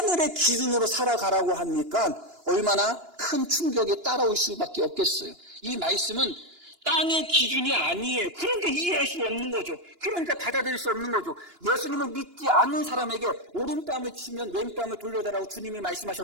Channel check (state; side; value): late; left; 2.9 ms